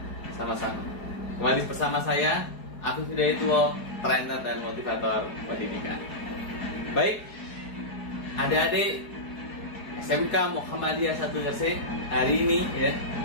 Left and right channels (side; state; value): right; late; 4.7 ms